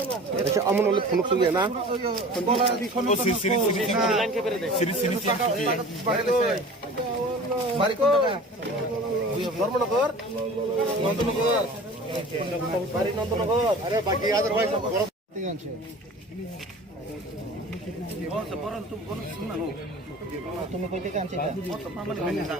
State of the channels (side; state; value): both; normal; correlation 0.41